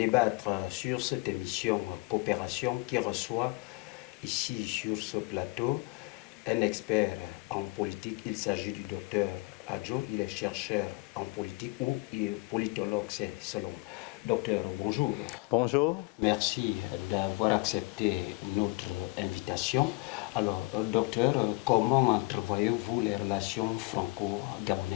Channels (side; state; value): right; quieter; 24.8 dB